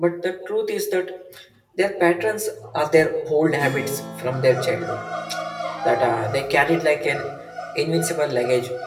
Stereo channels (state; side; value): identical; both; correlation 1.00